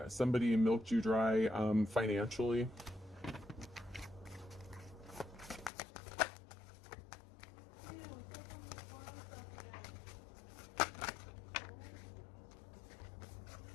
somebody milked you dry financially.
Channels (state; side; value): drops out; right; at 5.7 s